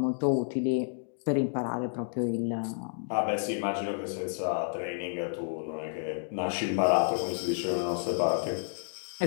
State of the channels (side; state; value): right; silent; digital silence